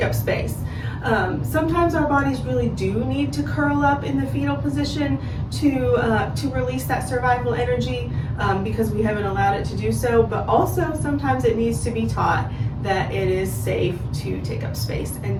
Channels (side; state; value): both; identical; correlation 1.00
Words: up space. Sometimes our bodies really do need to curl up in the fetal position to release that survival energy because we haven't allowed it to do so, but also sometimes it needs to be taught that it is safe to take up space and